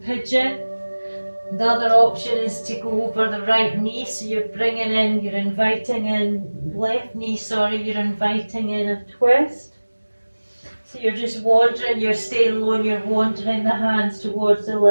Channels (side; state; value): both; inverted; correlation -1.00